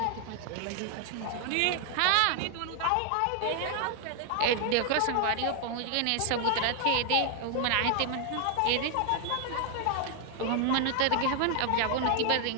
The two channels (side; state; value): both; different; correlation 0.00